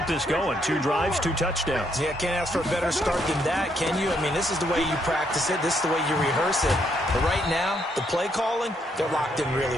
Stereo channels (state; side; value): normal; both; correlation 0.74